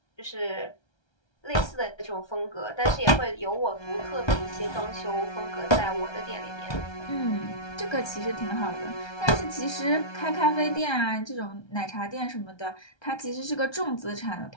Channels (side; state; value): right; late; 1.3 ms